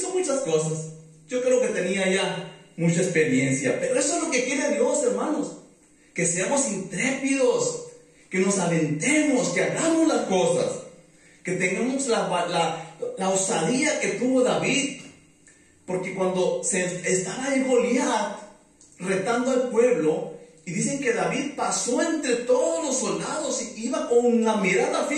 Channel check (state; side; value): identical; both; correlation 1.00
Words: muchas cosas. Yo creo que tenía ya mucha experiencia. Pero eso es lo que quiere Dios, hermanos. Que seamos intrépidos. Que nos aventemos, que hagamos las cosas. Que tengamos la osadía que tuvo David. Porque cuando estaba en Goliat retando al pueblo, y dicen que David pasó entre todos los soldados y iba con la mirada